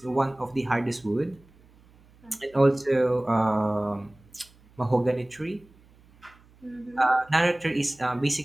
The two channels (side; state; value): right; noise; hum, 28 dB below the sound